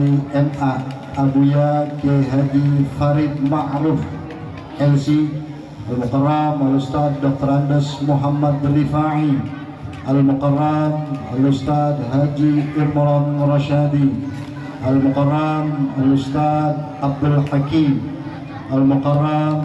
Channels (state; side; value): identical; both; correlation 1.00